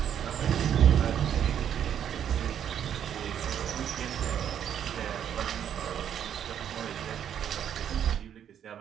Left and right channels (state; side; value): quieter; left; 9.3 dB